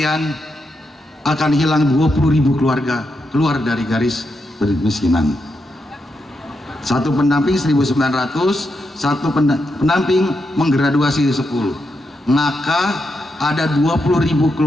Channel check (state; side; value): normal; both; correlation 0.84